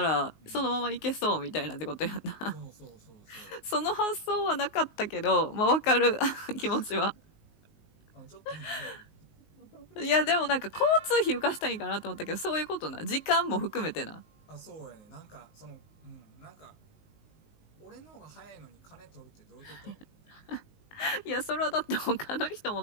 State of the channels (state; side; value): late; right; 19 ms